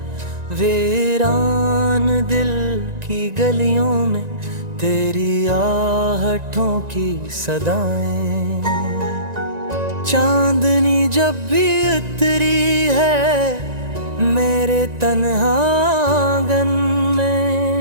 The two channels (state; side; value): late; left; 1.9 ms